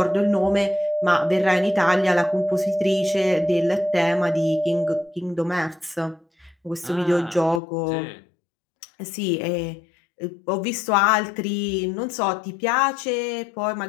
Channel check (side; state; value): right; drops out; at 7.6 s